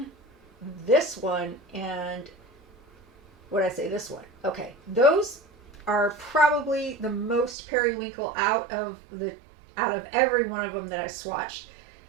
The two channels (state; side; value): drops out; left; at 7.6 s